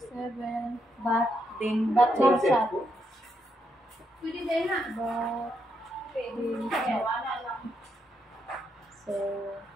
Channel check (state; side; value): normal; both; correlation 0.79